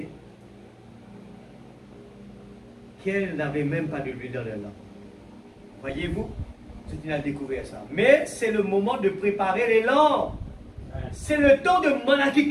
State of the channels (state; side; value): identical; both; correlation 1.00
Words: qu'elles n'avaient même pas de l'huile dans leur lampe. Voyez-vous, c'est une a découvert ça. Mais c'est le moment de préparer les lampes. C'est le temps de Malachie.